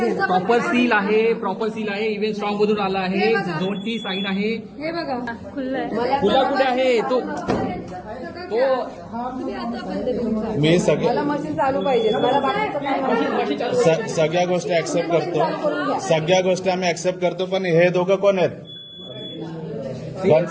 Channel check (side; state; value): both; identical; correlation 1.00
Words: प्रॉपर सील आहे इव्हेंट स्ट्रॉंग मधून आला आहे, झोनची साईन आहे. हे बघा खुल्लंय. खुला कुठे आहे तो मी मला मशीन चालू पाहिजे. मला बाकीचं काय माहिती. सगळ्या गोष्टी ऍक्सेप्ट करतो, सगळ्या गोष्टी आम्ही ऍक्सेप्ट करतो. पण हे दोघं कोण आहेत?